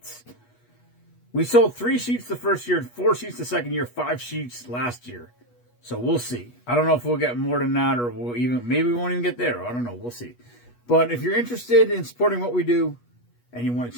We sold 3 sheets the first year, 4 sheets the second year, 5 sheets last year. So we'll see. I don't know if we'll get more than that, or maybe we won't even get there. I don't know. We'll see. But if you're interested in supporting what we do and you want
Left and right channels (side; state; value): right; late; 8.3 ms